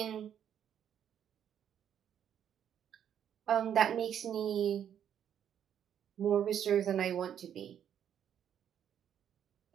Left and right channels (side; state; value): left; quieter; 9.3 dB